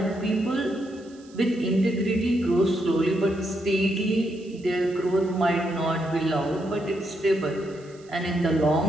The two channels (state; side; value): noise; right; hiss, 27 dB below the sound